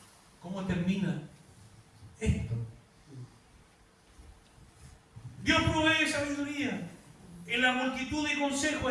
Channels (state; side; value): identical; both; correlation 1.00